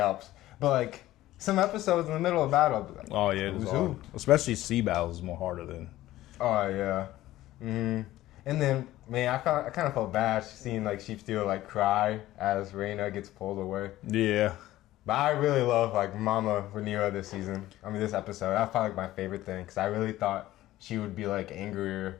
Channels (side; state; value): right; quieter; 15.4 dB